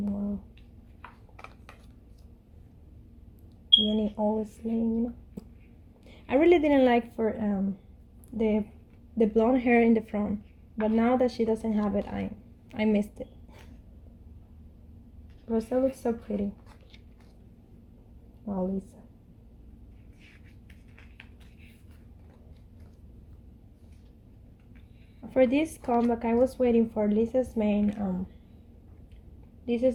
wow. Jenny always lame. I really didn't like for the blonde hair in the front, but now that she doesn't have it, I missed it. Rosa looks so pretty. Wow, Lisa. For this comeback, I was waiting for Lisa's main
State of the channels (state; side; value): identical; both; correlation 1.00